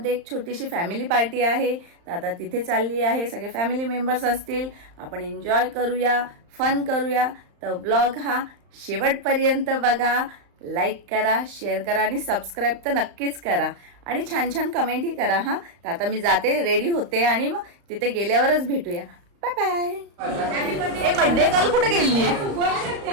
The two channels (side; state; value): left; late; 35 ms